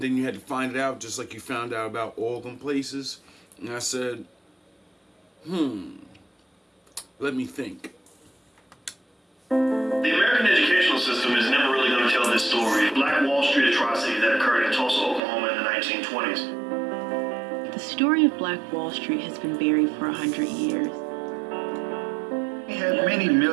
you had to find it out, just like you found out about all them places. And I said, let me think. The American educational system is never really going to tell this story. Black Wall Street atrocity that occurred in Tulsa, Oklahoma in the 1920s. The story of Black Wall Street has been buried for 100 years. We had many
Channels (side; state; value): left; drops out; at 15.2 s